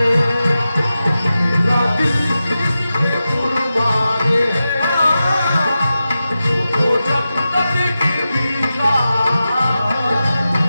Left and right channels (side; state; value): both; inverted; correlation -0.92